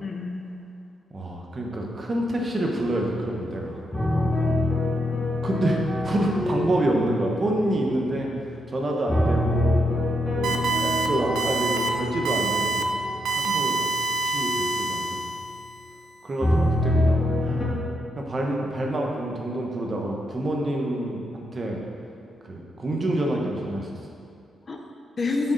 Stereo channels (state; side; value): normal; both; correlation 0.81